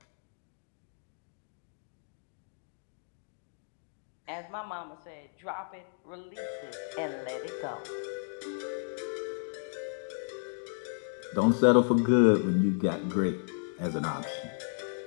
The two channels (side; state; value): right; silent; digital silence